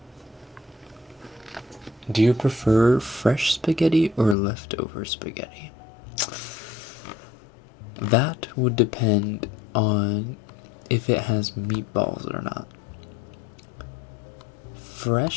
Do you prefer fresh spaghetti or leftover spaghetti? That would depend on if it has meatballs or not.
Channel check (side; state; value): right; drops out; at 4.4 s